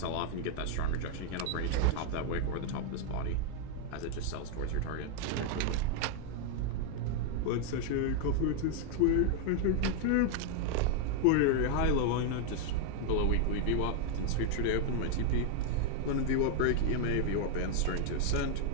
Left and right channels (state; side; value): different; both; correlation 0.00